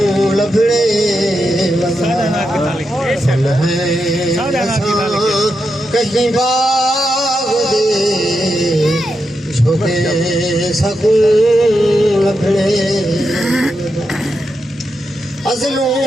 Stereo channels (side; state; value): both; normal; correlation 0.86